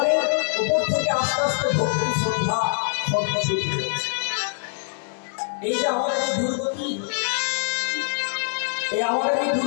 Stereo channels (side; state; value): right; silent; digital silence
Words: উপর থেকে আস্তে আস্তে ভক্তি শ্রদ্ধা সত্য শুরু হয়েছে। এই যে আমাদের এই দুর্গতি, এই আমাদের এই